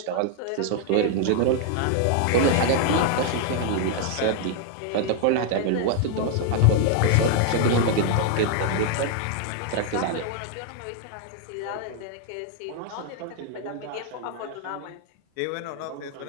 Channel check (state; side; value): different; both; correlation 0.00